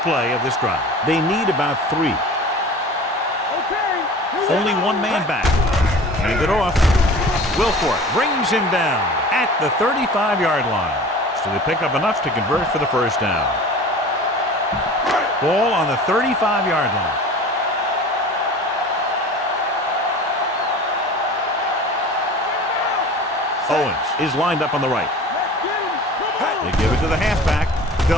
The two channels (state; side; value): normal; both; correlation 0.40